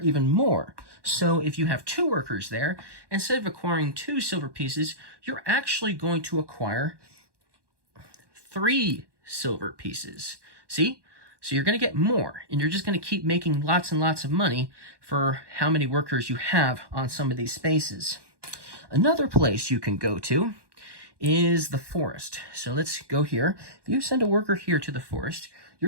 more. So if you have 2 workers there, instead of acquiring 2 silver pieces, you're actually going to acquire 3 silver pieces. See? So you're going to get more, and you're just going to keep making lots and lots of money for how many workers you have on some of these spaces. Another place you can go to is the forest. So let's go here. If you send a worker here to the forest,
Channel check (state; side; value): late; left; 1.1 ms